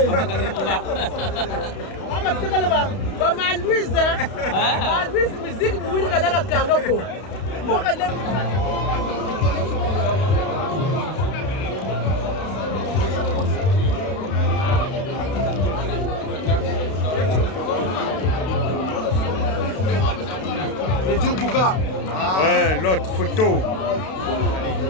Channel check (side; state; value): right; late; 32 ms